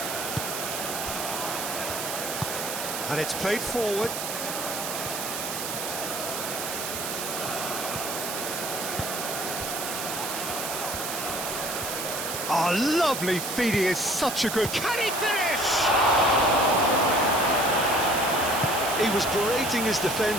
And it's played forward. Oh, lovely feed, he is such a good... Can he finish? He was berating his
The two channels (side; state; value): right; noise; hiss, 4 dB below the sound